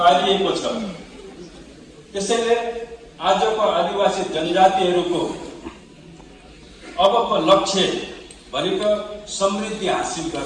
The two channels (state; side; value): identical; both; correlation 1.00